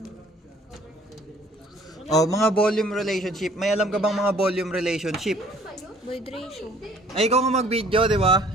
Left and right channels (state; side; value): normal; both; correlation 0.56